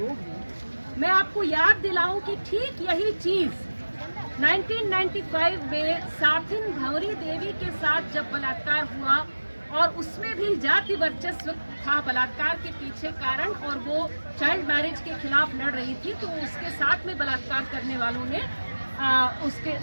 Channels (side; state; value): both; inverted; correlation -1.00